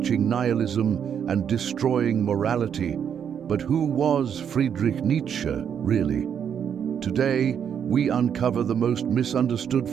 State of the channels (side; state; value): left; quieter; 8.2 dB